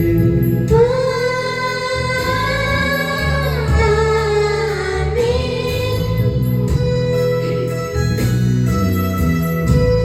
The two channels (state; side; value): identical; both; correlation 1.00